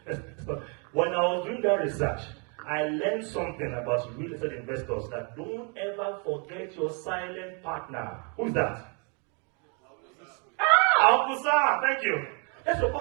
when I was doing that research, I learned something about real estate investors, that don't ever forget your silent partner. Who's that? Amusa, thank you. That's your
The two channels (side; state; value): left; quieter; 36.1 dB